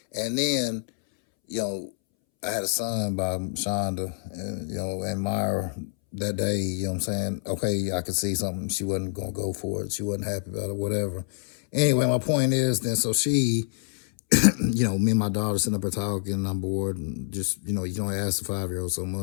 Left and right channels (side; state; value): right; silent; 60 dB below the other